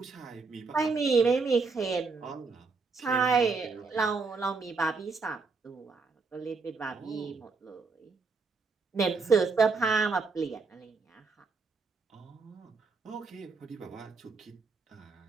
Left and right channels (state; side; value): quieter; left; 4.5 dB